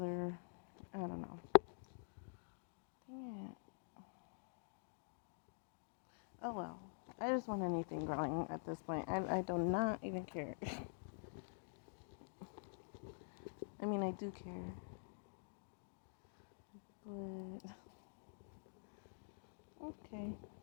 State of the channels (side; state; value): right; silent; digital silence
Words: I don't know. Dang it. Oh well. I just want anything growing at this point. I do not even care. I mean, I do care. But okay.